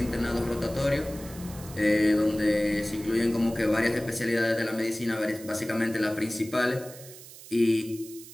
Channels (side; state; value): right; noise; hiss, 17 dB below the sound